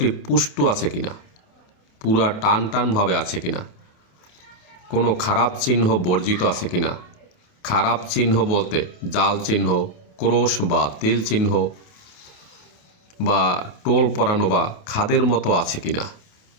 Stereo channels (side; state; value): right; late; 27 ms